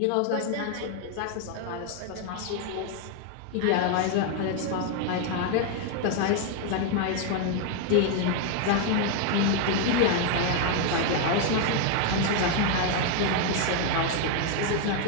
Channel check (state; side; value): different; both; correlation 0.01